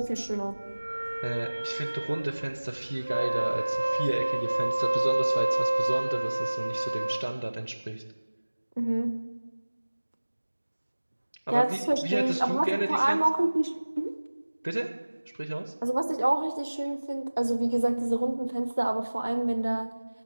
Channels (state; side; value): inverted; both; correlation -1.00